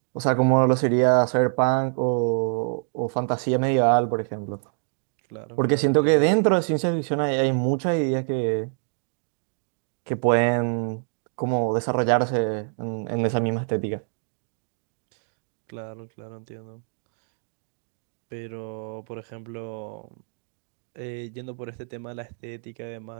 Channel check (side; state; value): left; silent; 61 dB below the other